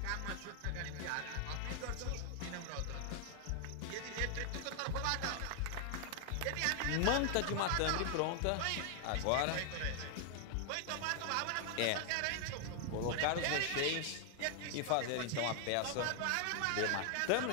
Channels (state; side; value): different; both; correlation 0.00